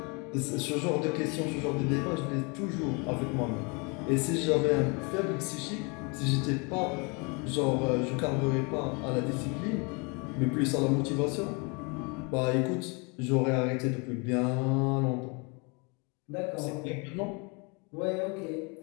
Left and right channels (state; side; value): quieter; right; 31.6 dB